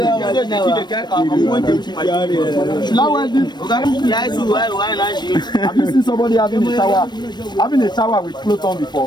Have you seen somebody having a shower with clothes on before?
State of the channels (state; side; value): late; right; 0.21 ms